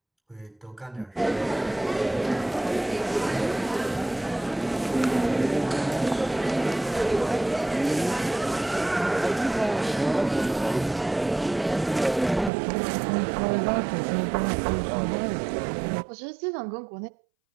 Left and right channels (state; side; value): drops out; left; at 12.5 s